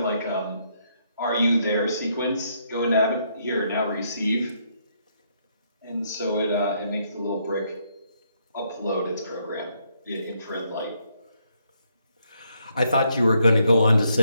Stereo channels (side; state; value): both; inverted; correlation -0.74